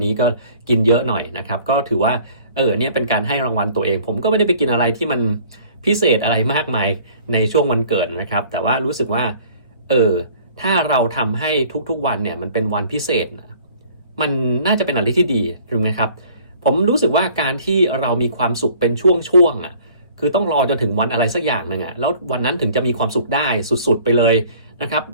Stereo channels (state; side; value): inverted; both; correlation -0.53